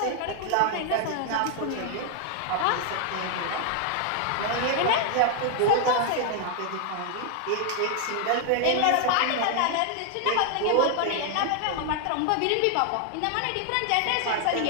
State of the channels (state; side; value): different; both; correlation 0.00